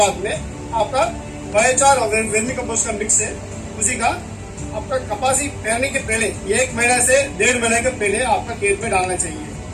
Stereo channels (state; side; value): identical; both; correlation 1.00